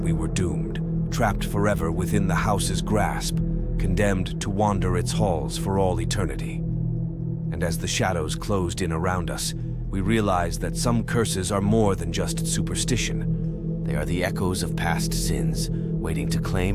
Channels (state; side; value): identical; both; correlation 1.00